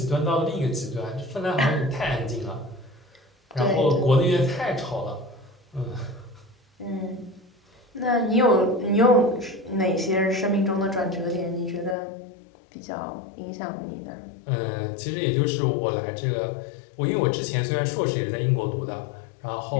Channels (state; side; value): drops out; right; at 12.0 s